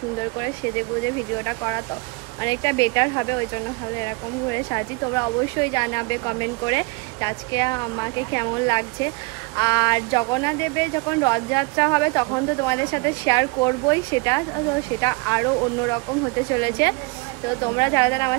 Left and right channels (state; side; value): quieter; left; 27.0 dB